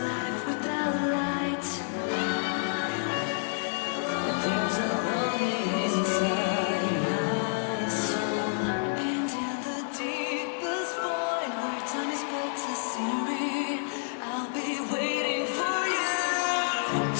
without light. There's a longing inside my soul, and in the deepest void where time is but a scenery, I'll be waiting for you,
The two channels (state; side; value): silent; right; digital silence